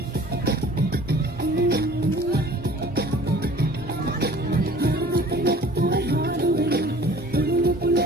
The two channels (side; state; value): both; normal; correlation 0.48